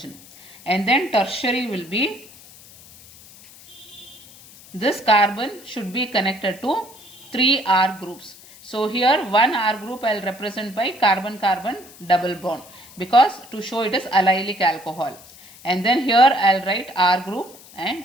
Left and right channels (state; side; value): noise; left; hiss, 21 dB below the sound